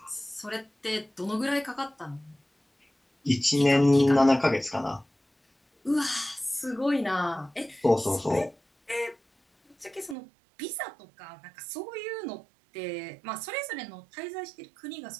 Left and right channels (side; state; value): left; drops out; at 10.2 s